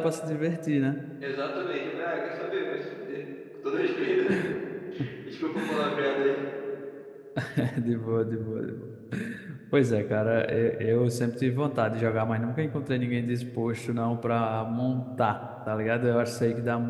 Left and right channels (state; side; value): identical; both; correlation 1.00